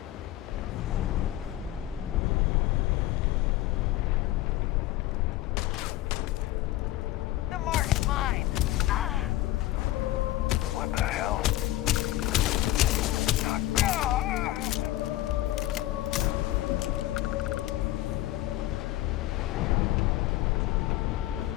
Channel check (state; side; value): quieter; right; 15.8 dB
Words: The mark's mine. Ah! What the hell?